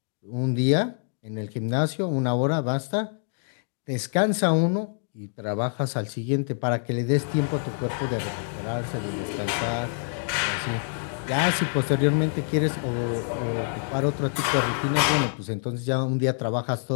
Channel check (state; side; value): silent; right; digital silence